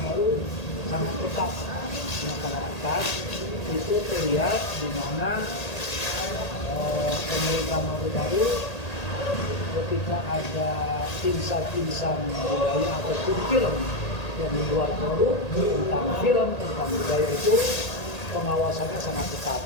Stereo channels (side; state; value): right; late; 1.8 ms